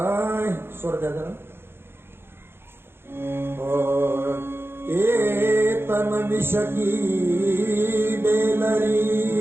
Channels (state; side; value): late; left; 0.11 ms